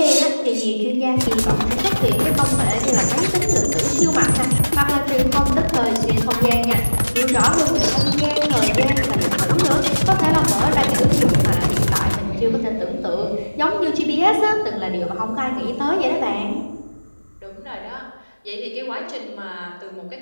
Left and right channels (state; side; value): inverted; both; correlation -1.00